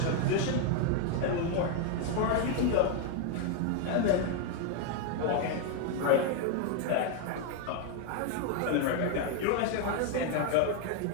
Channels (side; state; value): both; different; correlation 0.00